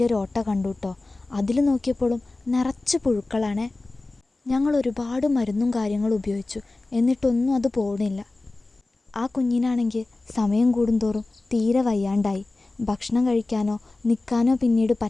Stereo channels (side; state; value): right; quieter; 3.1 dB